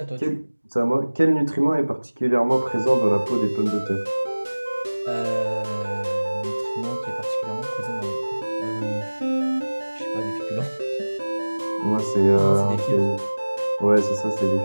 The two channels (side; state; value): both; inverted; correlation -1.00